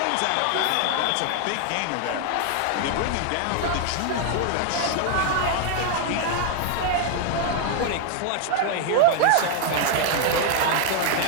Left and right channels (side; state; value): both; different; correlation 0.00